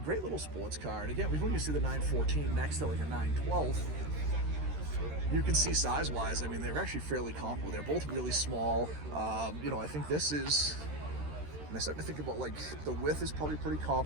little sports car, and again, when you see the 914 next to like a 912, you can see size-wise, I mean, they're actually fairly comparable. They're both really small. You know, I think this is, and I start to think about, like, the width is probably pretty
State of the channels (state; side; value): late; left; 13 ms